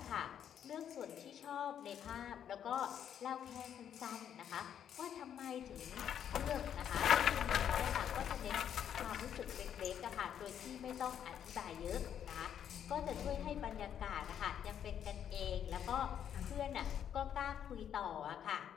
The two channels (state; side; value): quieter; right; 9.2 dB